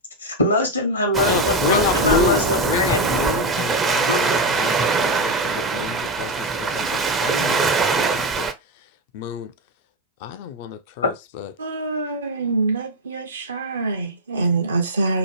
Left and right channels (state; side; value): normal; both; correlation 0.08